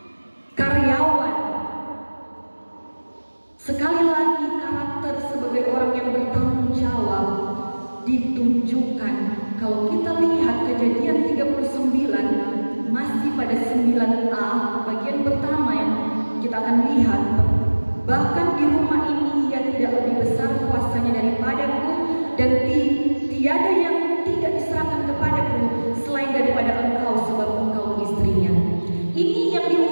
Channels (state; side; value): inverted; both; correlation -1.00